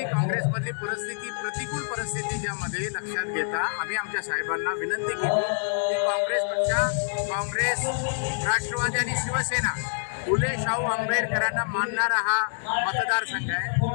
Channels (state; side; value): silent; right; digital silence